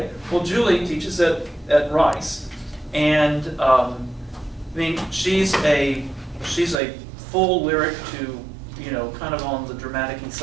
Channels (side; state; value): left; drops out; at 6.8 s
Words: well, Julie teaches at Rice, and I mean, she's a full lyric to, you know, kind of on the dramatic-y